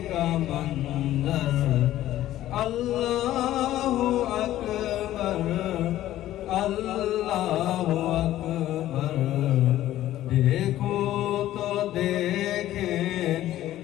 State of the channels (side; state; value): right; quieter; 13.8 dB